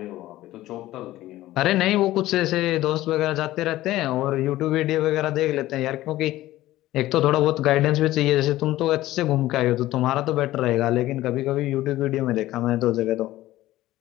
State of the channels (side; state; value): right; quieter; 15.8 dB